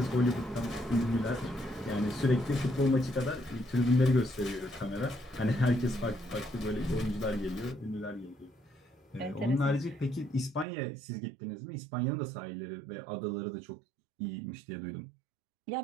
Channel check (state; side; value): drops out; left; at 10.7 s